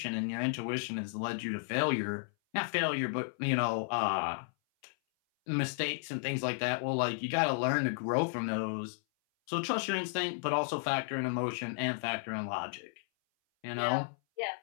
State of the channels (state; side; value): silent; right; 55 dB below the other